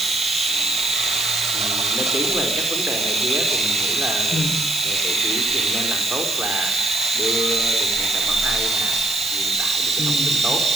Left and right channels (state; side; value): noise; right; hiss, 6 dB below the sound